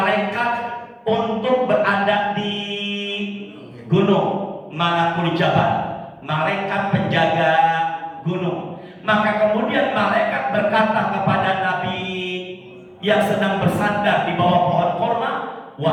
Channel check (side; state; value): both; identical; correlation 1.00